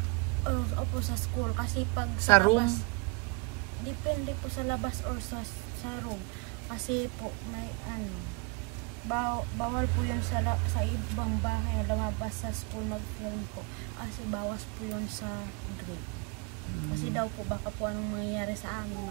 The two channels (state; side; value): quieter; left; 30.1 dB